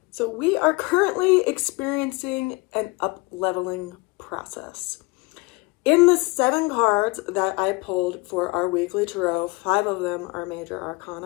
So we are currently experiencing an up-leveling process. In the 7 cards that I pulled for our weekly tarot, 5 of them are major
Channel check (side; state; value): right; quieter; 25.9 dB